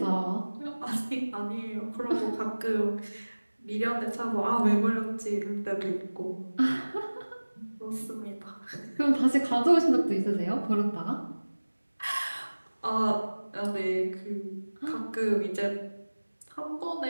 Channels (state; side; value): inverted; both; correlation -1.00